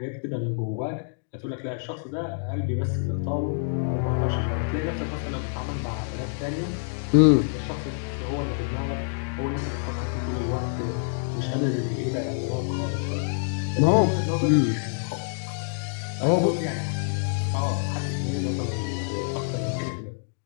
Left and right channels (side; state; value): right; silent; digital silence